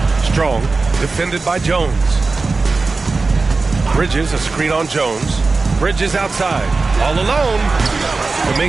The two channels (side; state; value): left; quieter; 3.9 dB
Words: Strong, defended by Jones. Bridges, a screen on Jones. Bridges outside, all alone.